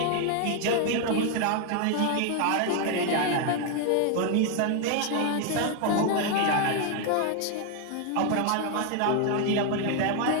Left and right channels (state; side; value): different; both; correlation 0.01